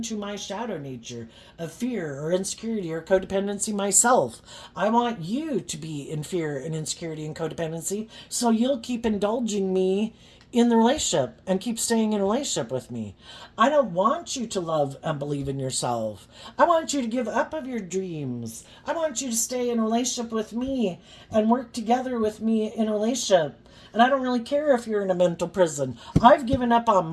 my shadow nature of fear or insecurity or codependency myself. I want you to be in fear and insecurity and codependency, so you'll keep indulging me in the relationship and keep staying in a relationship with me. I don't want you to love and believe in yourself. I want you to give up of your dreams. I want you to stay in a relationship with me and work together with me in a relationship. And I don't really care if you're in a mental prison. I've given up on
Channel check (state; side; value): identical; both; correlation 1.00